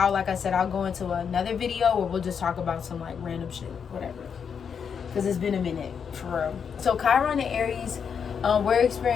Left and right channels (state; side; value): quieter; right; 6.9 dB